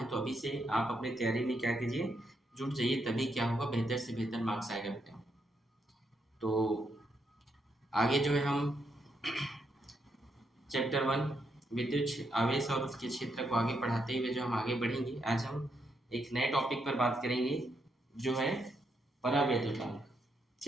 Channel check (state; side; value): normal; both; correlation 0.79